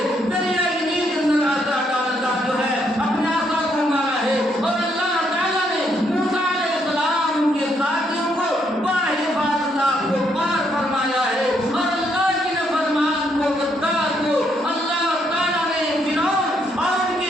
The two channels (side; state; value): both; normal; correlation 0.74